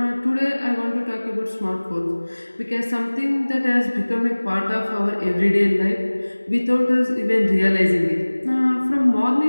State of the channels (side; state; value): both; inverted; correlation -1.00